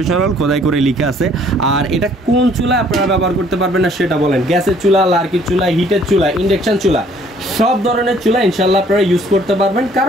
খোদাই করে লেখা আছে। আর এটা কোন চুলা আপনারা ব্যবহার করতে পারবেন না সেটা বলেন, গ্যাসের চুলা, লার্কির চুলা, হিটের চুলা, ইন্ডাকশন চুলা, সব ধরনের চুলা ইনশাল্লাহ আপনারা ইউজ করতে পারবেন,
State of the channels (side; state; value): both; normal; correlation 0.60